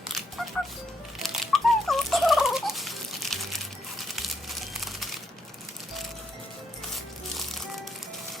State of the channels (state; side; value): normal; both; correlation 0.75